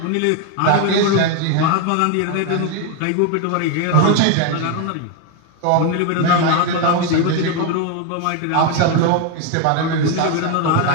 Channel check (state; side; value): different; both; correlation 0.01